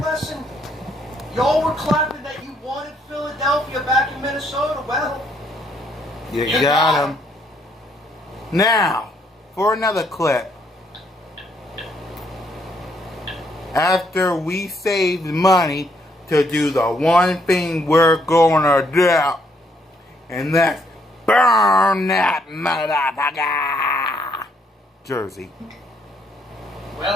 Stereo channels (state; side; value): normal; both; correlation 0.71